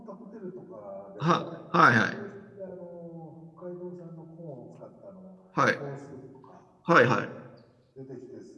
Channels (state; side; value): identical; both; correlation 1.00